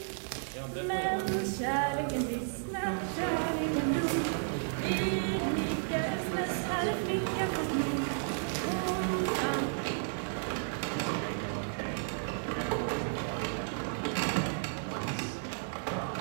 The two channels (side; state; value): left; silent; digital silence